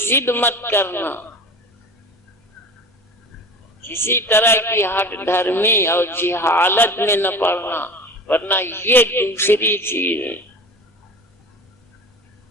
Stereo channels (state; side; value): normal; both; correlation 0.36